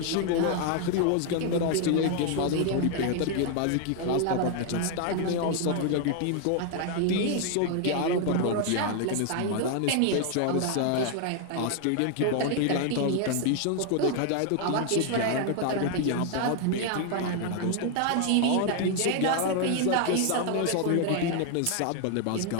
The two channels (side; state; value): both; different; correlation 0.00